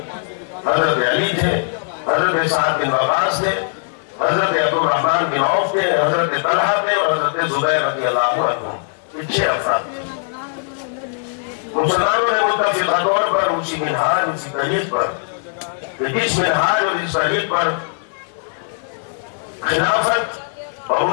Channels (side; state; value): right; silent; 56 dB below the other